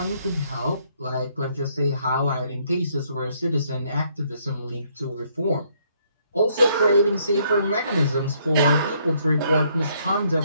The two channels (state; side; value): inverted; both; correlation -0.69